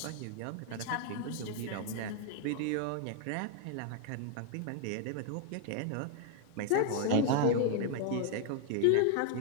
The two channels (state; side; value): different; both; correlation 0.00